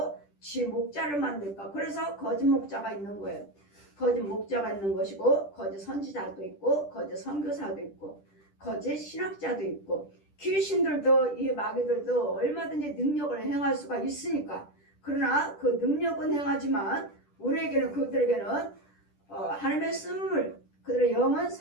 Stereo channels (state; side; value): late; right; 10 ms